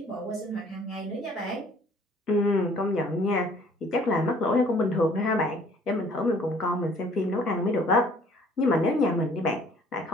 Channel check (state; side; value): normal; both; correlation 0.57